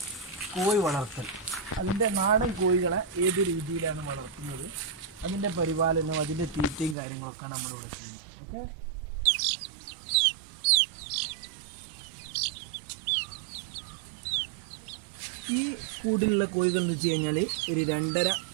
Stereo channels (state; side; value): drops out; left; at 7.0 s